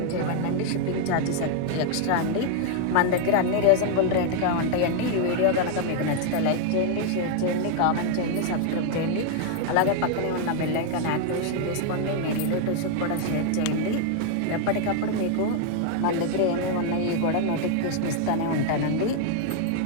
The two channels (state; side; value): different; both; correlation 0.00